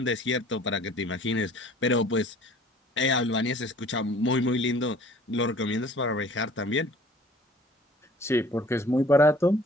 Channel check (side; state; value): both; normal; correlation 0.51